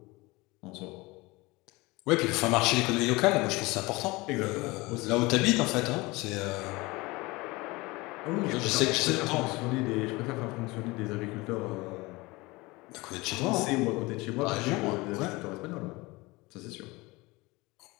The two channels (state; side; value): quieter; right; 22.9 dB